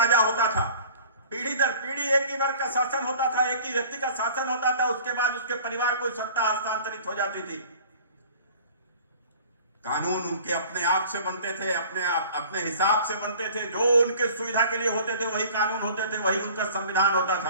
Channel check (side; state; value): both; inverted; correlation -0.46